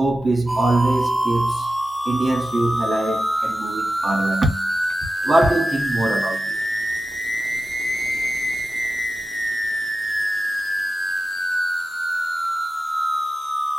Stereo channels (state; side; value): normal; both; correlation 0.93